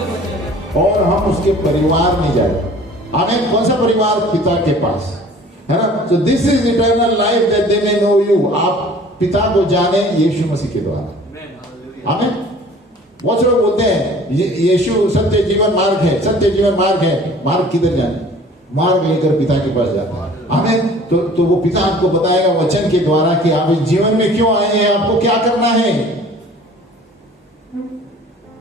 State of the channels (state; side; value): normal; both; correlation 0.49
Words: और हम उसके परिवार में जाए। आमीन। कौन सा परिवार? पिता के पास, है ना? तो this is eternal life that they may know you. आप पिता को जाने यीशु मसीह के द्वारा। आमीन। बहुत से लोग बोलते हैं यीशु सत्य जीवन मार्ग है, सत्य जीवन मार्ग है। मार्ग किधर जाने? मार्ग लेकर पिता के पास जाता है। आमीन। तो वो पिता आपको बताएगा वचन के द्वारा कि आप इस जीवन में क्यों आए हैं, आपको क्या करना है।